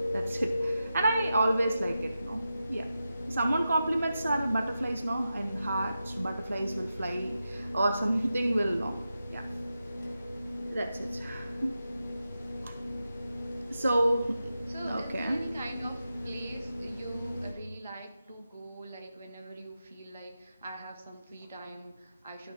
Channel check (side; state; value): both; inverted; correlation -0.90